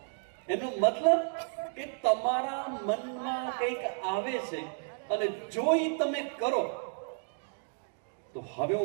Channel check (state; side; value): silent; left; 56 dB below the other